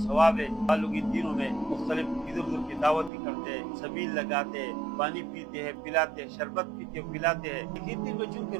ہے۔ لوگ ان دنوں میں مختلف ادھر ادھر کی دعوت بھی کرتے ہیں، سبیل لگاتے ہیں، پانی پیتے ہیں، پلاتے ہیں، شربت پیتے ہیں، پلاتے ہیں، لیکن دن میں چونکہ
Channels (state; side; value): drops out; left; at 3.1 s